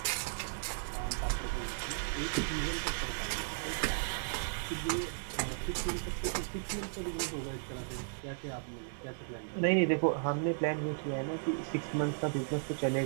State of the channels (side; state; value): left; silent; 54 dB below the other